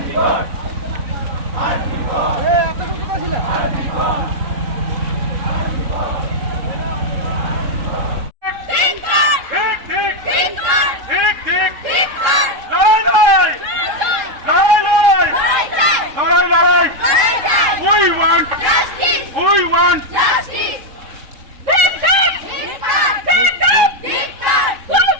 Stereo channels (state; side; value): late; left; 3.7 ms